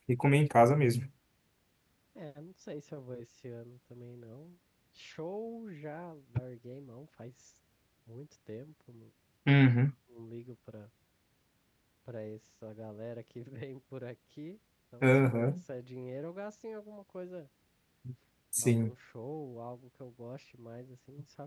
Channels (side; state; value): both; identical; correlation 1.00